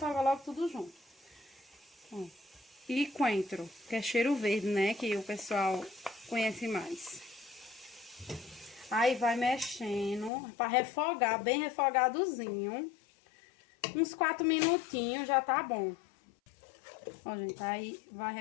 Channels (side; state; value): right; drops out; at 10.3 s